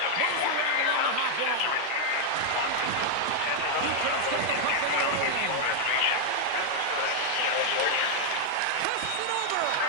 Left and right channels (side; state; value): both; different; correlation 0.00